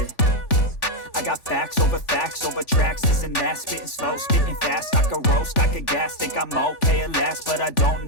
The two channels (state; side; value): late; right; 3.4 ms